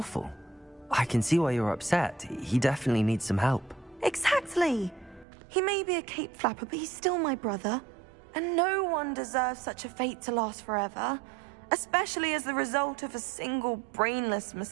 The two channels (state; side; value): drops out; left; at 5.2 s